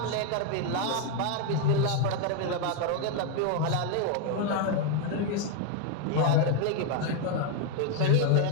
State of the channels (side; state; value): both; different; correlation 0.01